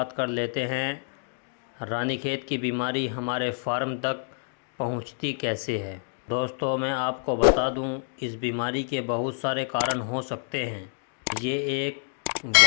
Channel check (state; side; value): silent; right; digital silence